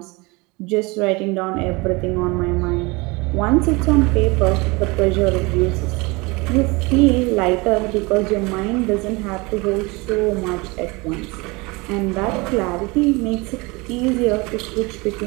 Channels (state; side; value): quieter; left; 25.5 dB